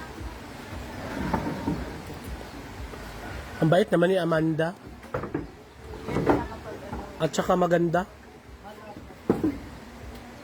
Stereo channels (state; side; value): identical; both; correlation 1.00